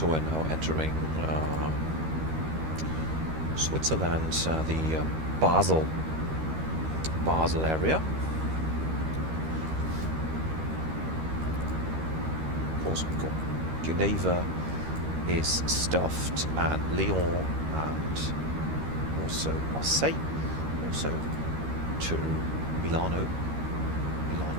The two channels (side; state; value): left; late; 13 ms